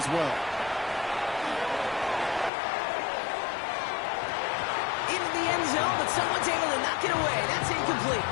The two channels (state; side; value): drops out; right; at 2.5 s